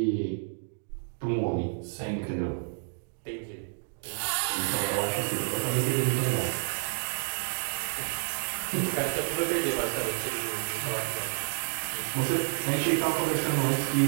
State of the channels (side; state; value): left; silent; 58 dB below the other